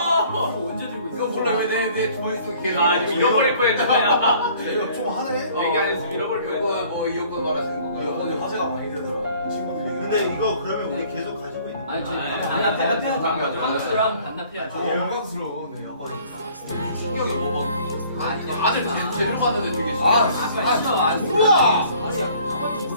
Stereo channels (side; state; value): both; inverted; correlation -0.55